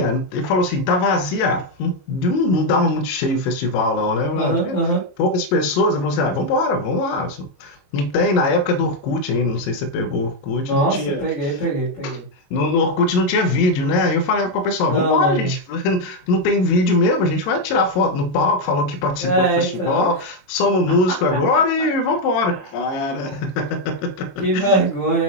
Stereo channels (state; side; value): late; right; 22 ms